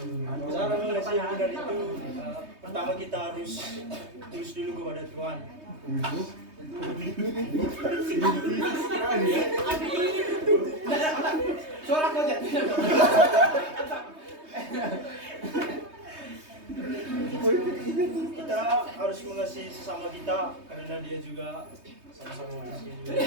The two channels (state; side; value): late; left; 3.2 ms